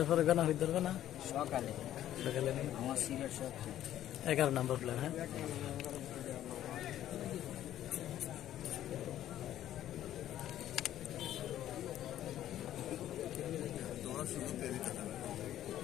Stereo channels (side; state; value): right; quieter; 12.2 dB